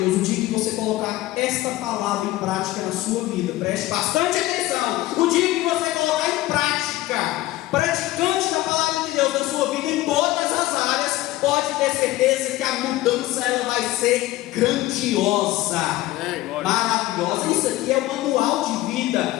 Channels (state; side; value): quieter; right; 17.0 dB